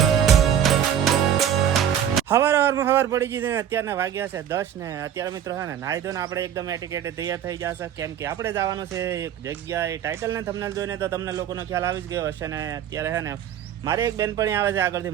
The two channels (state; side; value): quieter; left; 9.6 dB